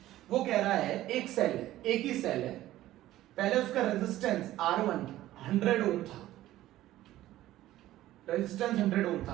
वो कह रहा है एक सेल है, एक ही सेल है, पहले उसका रेजिस्टेंस R1 100 ओम था, रेजिस्टेंस 100 ओम था।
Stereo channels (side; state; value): left; quieter; 14.7 dB